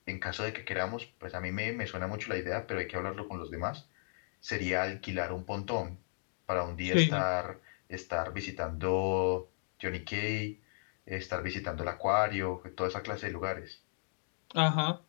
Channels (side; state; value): right; silent; digital silence